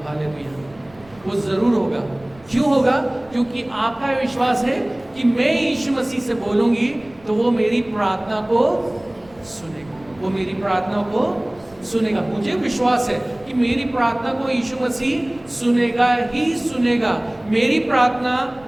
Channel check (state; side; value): noise; right; rumble, 26 dB below the sound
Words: हालेलुया, वो जरूर होगा। क्यों होगा? क्योंकि आपका विश्वास है कि मैं यीशु मसीह से बोलूंगी तो वो मेरी प्रार्थना को सुनेगा, वो मेरी प्रार्थना को सुनेगा। मुझे विश्वास है कि मेरी प्रार्थना को यीशु मसीह सुनेगा ही सुनेगा। मेरी प्रार्थना,